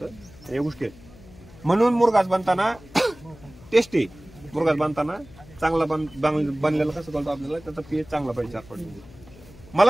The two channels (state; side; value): noise; left; hum, 21 dB below the sound